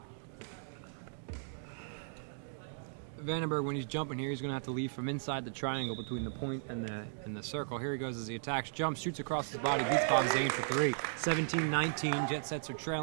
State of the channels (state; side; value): silent; left; digital silence